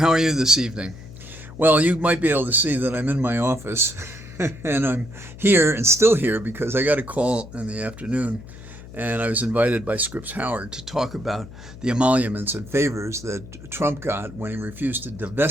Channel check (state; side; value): noise; left; hum, 16 dB below the sound